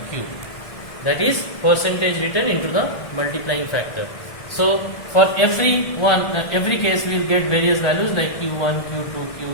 Q, that is percentage written into the multiplying factor. So for every case we will get various values like Q1, Q2,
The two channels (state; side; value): late; right; 1.5 ms